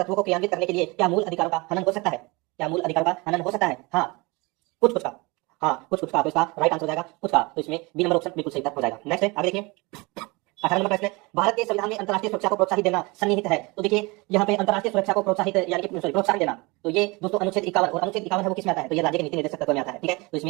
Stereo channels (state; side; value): quieter; left; 25.6 dB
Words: को क्रियान्वित करने के लिए क्या मूल अधिकारों का हनन हो सकता है? क्या मूल अधिकारों का हनन हो सकता है? हाँ, कुछ कुछ का। हाँ, कुछ कुछ का। तो इसका राइट आंसर हो जाएगा कुछ का। तो इसमें बी नंबर ऑप्शन बिल्कुल सही उत्तर हो जाएगा। नेक्स्ट है, आगे देखिए, 18 नंबर प्रश्न है, भारत के संविधान में अंतर्राष्ट्रीय सुरक्षा को प्रोत्साहित देना सन्निहित है। तो देखिए, यहाँ पे अंतर्राष्ट्रीय सुरक्षा को प्रोत्साहित यानी कि प्रोत्साहन देना, तो ये दोस्तों अनुच्छेद 51 और अनुच्छेद 51 है वो किस में आता है? तो ये राज्य के नीति निर्देशक तत्व में आता है। ठीक है, तो